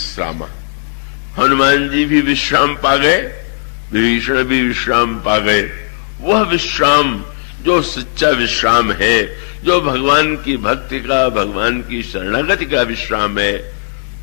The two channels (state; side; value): silent; right; digital silence